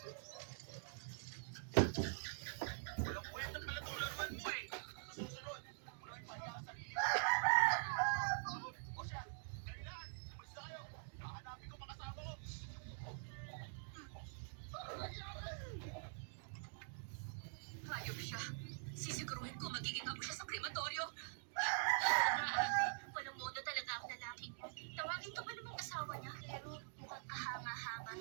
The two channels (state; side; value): silent; left; digital silence